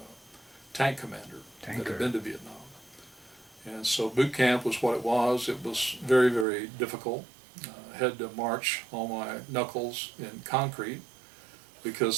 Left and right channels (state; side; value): drops out; left; at 6.5 s